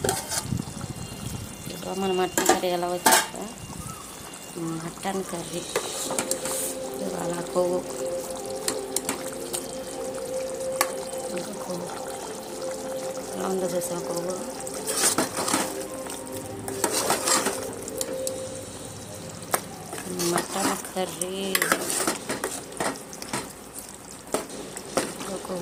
మన మటన్ కర్రీ ఎలా వచ్చాక మటన్ కర్రీ ఇవాళ కొవ్వు ఇంకా కొవ్వు ఎలా ఉందో చూసాం. కొవ్వు మటన్ కర్రీ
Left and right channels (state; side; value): identical; both; correlation 1.00